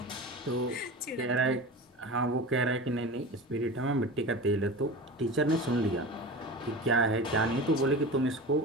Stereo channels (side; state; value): both; normal; correlation 0.31